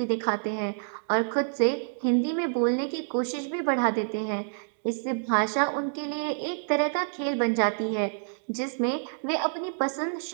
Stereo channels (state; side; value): silent; left; digital silence